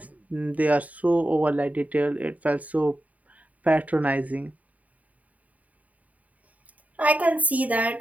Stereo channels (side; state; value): left; late; 0.071 ms